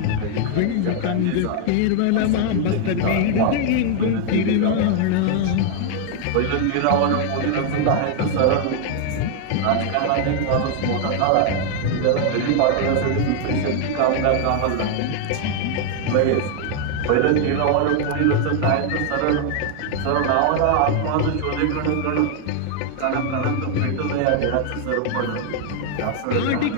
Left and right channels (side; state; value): both; different; correlation 0.00